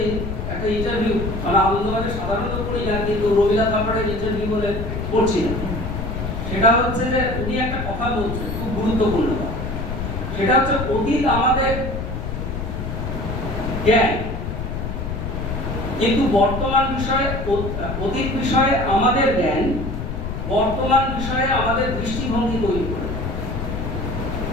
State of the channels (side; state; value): left; noise; rumble, 4 dB below the sound